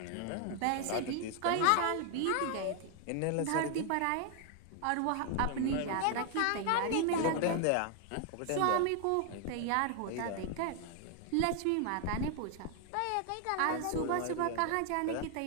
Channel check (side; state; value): both; different; correlation 0.00